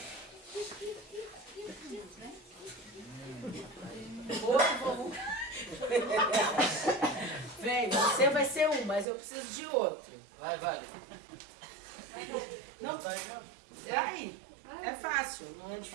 Outro voluntário. Vem, você vai ser um, mas eu preciso de outro. Vai. Não, aí, é fácil, não é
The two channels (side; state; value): left; drops out; at 9.1 s